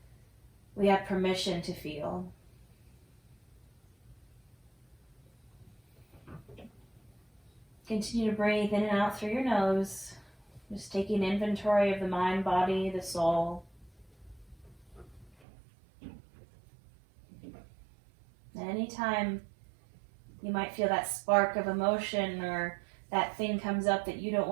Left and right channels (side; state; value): left; drops out; at 15.4 s